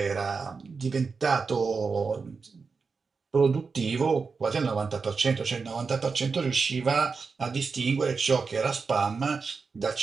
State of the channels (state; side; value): quieter; left; 4.9 dB